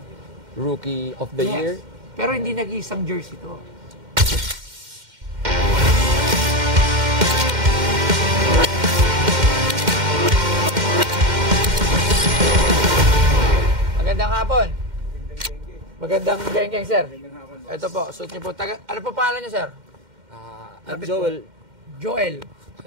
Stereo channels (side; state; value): left; late; 2.1 ms